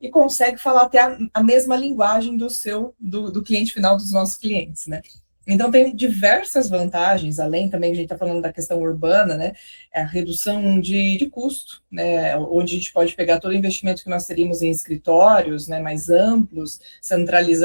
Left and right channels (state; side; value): inverted; both; correlation -1.00